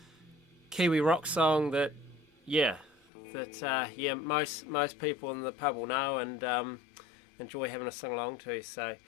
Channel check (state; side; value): drops out; right; at 3.1 s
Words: Kiwi rock song that, yeah, most people in the pub will know and enjoy having a sing along to. So,